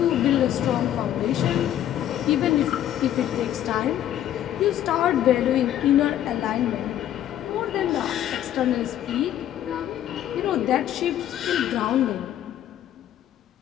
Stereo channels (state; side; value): quieter; right; 11.5 dB